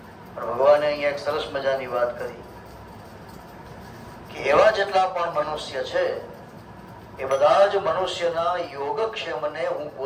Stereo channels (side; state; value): both; identical; correlation 1.00